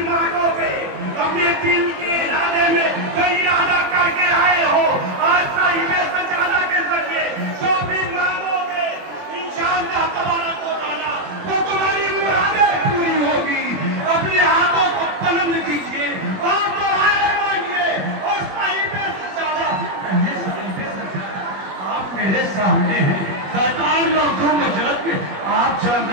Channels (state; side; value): late; left; 21 ms